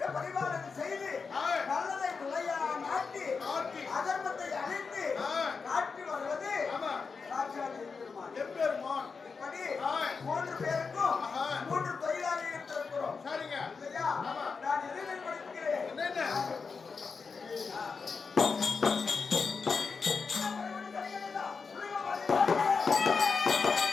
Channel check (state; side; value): quieter; right; 5.0 dB